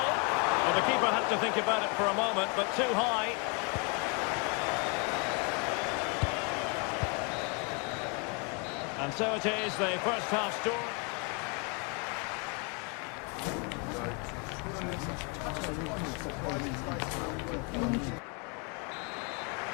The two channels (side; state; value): right; quieter; 34.5 dB